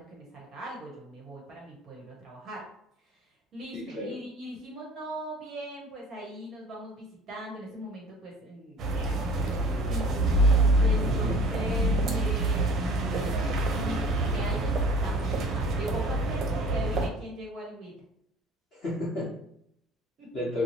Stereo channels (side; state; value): both; normal; correlation 0.47